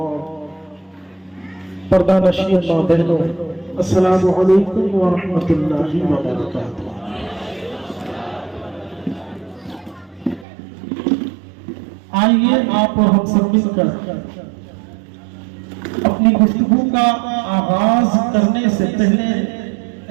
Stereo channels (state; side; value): drops out; left; at 10.5 s